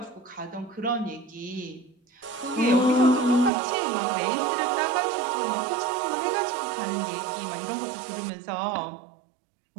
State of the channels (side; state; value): left; drops out; at 3.5 s